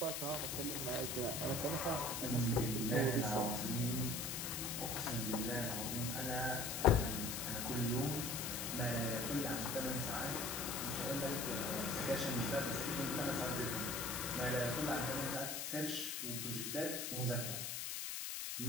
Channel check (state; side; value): noise; left; hiss, 3 dB below the sound